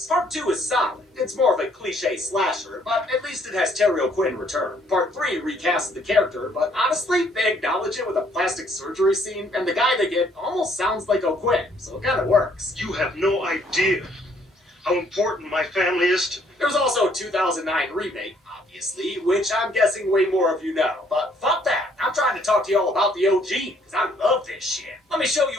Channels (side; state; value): both; normal; correlation 0.65